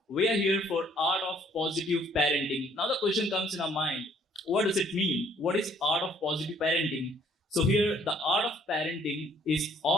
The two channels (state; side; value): normal; both; correlation 0.62